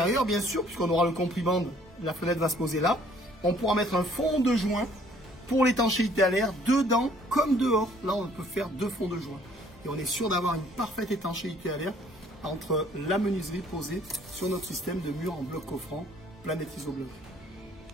bien sûr, puisqu'on aura le compriband, la fenêtre va se poser là. On pourra mettre un fond de joint pour l'étanchéité à l'air, dedans comme dehors. Là, on peut faire 2 fonds de joint. Et on est sûr d'avoir une parfaite étanchéité à l'air entre la menuiserie posée sur notre système de mur en bloc coffrant Planète Isobloc.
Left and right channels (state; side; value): normal; both; correlation 0.59